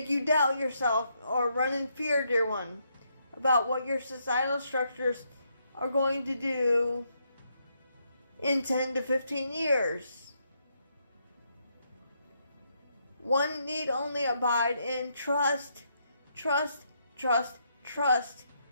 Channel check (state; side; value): inverted; both; correlation -0.76